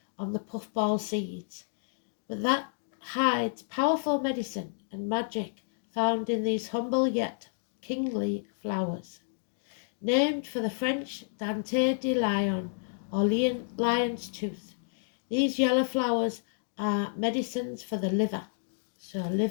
on the puffball seeds. But that hides powerful medicine and magic found in these humble yet kingly flowers. Named for the French Dente de Lion, or lion's tooth, these yellow flowers are medicines for the liver, so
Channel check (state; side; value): silent; right; digital silence